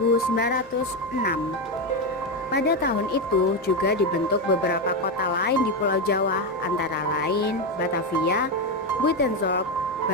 Pada tahun itu juga dibentuk beberapa kota lain di Pulau Jawa, antara lain Batavia, Buitenzorg,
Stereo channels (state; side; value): normal; both; correlation 0.10